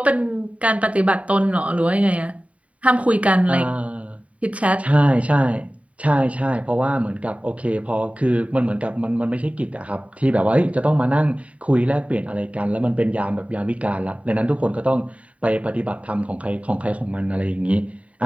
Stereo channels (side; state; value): left; late; 0.066 ms